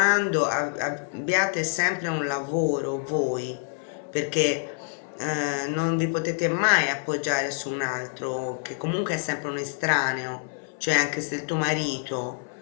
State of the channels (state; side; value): silent; right; 61 dB below the other